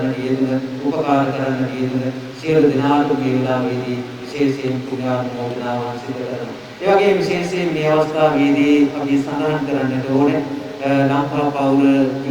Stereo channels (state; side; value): identical; both; correlation 1.00